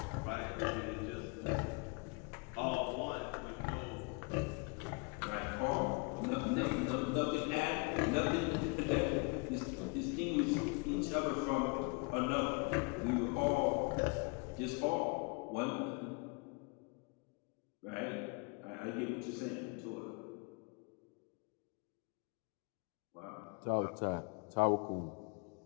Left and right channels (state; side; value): quieter; right; 32.3 dB